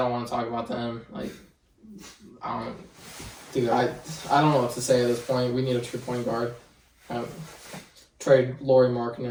want to talk about them. Like, I don't know what to say at this point. We need a true point guard. Trade Lauri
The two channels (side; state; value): both; identical; correlation 1.00